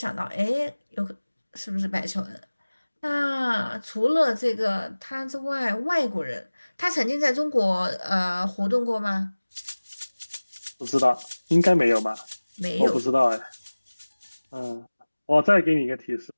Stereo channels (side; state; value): both; inverted; correlation -1.00